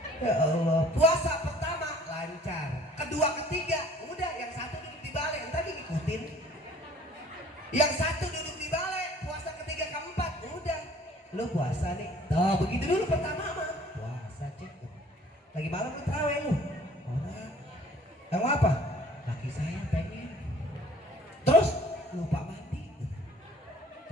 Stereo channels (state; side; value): normal; both; correlation 0.52